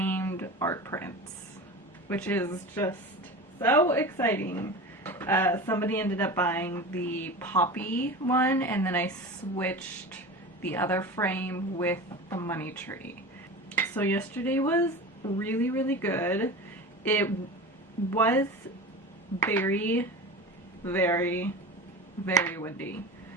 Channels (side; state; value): both; normal; correlation 0.31